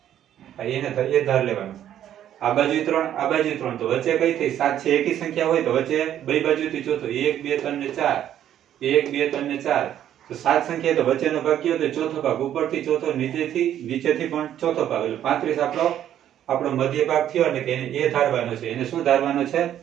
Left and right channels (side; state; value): left; quieter; 10.9 dB